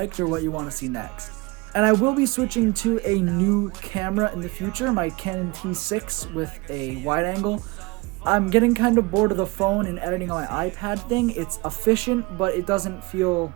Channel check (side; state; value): left; quieter; 24.6 dB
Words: or what you want to see next. And I will be switching to a new camera in the future, my Canon T6 with a wide angle. I'm getting kind of bored of the phone and editing on my iPad thing. It's efficient, but it doesn't feel